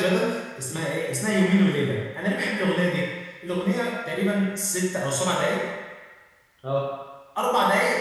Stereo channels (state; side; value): identical; both; correlation 1.00